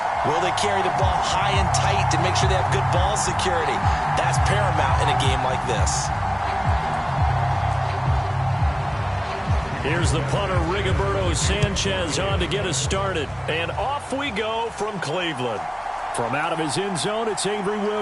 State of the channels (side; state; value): both; identical; correlation 1.00